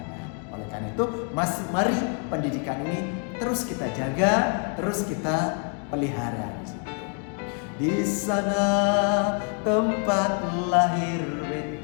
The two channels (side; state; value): right; quieter; 39.8 dB